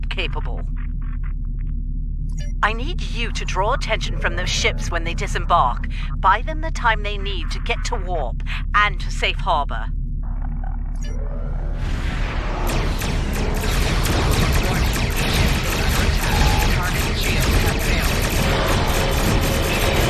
capable. I need you to draw attention from those ships when they disembark. Buy them the time they need to get to warp and to safe harbor.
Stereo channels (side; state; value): both; identical; correlation 1.00